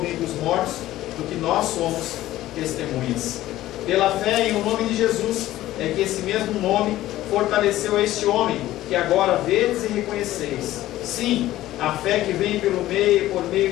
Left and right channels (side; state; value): right; quieter; 15.0 dB